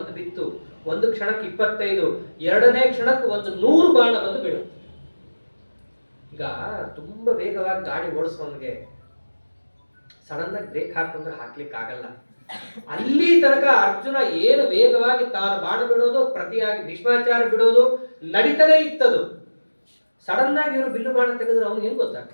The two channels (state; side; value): inverted; both; correlation -1.00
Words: ಬಿತ್ತು. ಒಂದು ಕ್ಷಣಕ್ಕೆ 25, ಎರಡನೇ ಕ್ಷಣಕ್ಕೆ 100 ಬಾಣ ಬಂದು ಬೀಳುತ್ತೆ. ಈಗ ತುಂಬಾ ವೇಗವಾಗಿ ಗಾಡಿ ಓಡಿಸೋನ್ಗೆ ಸಡನ್ ಆಗಿ ಬ್ರೇಕ್ ಹಾಕೊಂಡ್ರೆ ಹಾಕ್ಲಿಕ್ಕೆ ಆಗಲ್ಲ. ಅಲ್ಲಿ ತನಕ ಅರ್ಜುನ ಏನು ವೇಗವಾಗಿ ತಾನು ಬಾಣ ಬಿಡೋದು, ಪ್ರತಿಯಾಗಿ ಭೀಷ್ಮಾಚಾರ್ಯ ಬಿಡೋದು ನಡೀತಾನೆ ಇತ್ತದು. ಸಡನ್ ಆಗಿ ಇವರು ಬಿಲ್ಲು ಬಾಣ ತೆಗೆದ್ರೆ ಅವನು ಏನ್